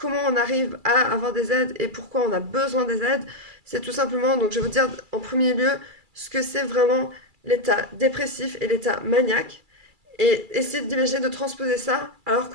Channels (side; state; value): left; late; 2.3 ms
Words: on arrive à avoir des aides et pourquoi on a besoin des aides, c'est tout simplement, donc je vais vous dire en premier lieu ce que c'est vraiment l'état dépressif et l'état maniaque et essayer d'imaginer de transposer ça alors